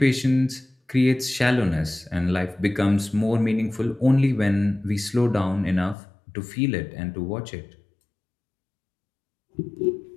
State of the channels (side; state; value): right; drops out; at 6.0 s